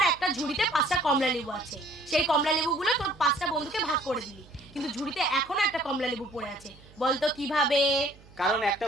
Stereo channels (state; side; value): noise; right; hum, 24 dB below the sound